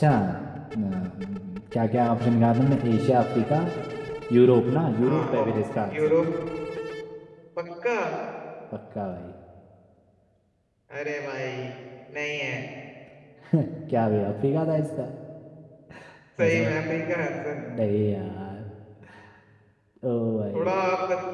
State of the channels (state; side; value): identical; both; correlation 1.00